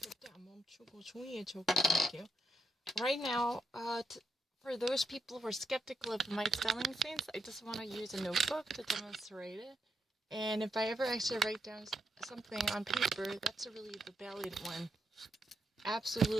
안 멈추고 종이에 적어볼게요. Right now, for those people who are skeptical of my spelling sense, I just want to use a notebook to demonstrate it. And if I ever actually write down something on paper, that's really the valid one.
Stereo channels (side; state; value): both; normal; correlation 0.81